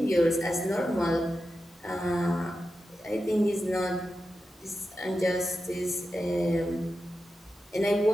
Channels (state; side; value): normal; both; correlation 0.91